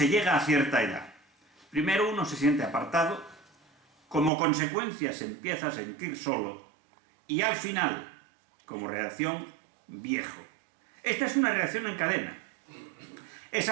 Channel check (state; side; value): drops out; left; at 4.3 s